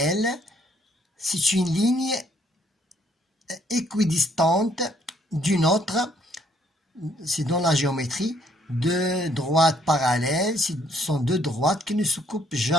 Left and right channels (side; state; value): both; normal; correlation 0.66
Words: c'est une ligne équidistante d'une autre, c'est dans la géométrie, deux droites parallèles, ce sont deux droites qui ne se coupent